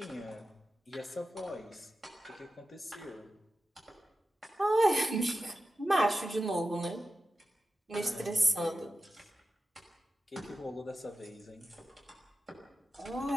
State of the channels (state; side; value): normal; both; correlation 0.92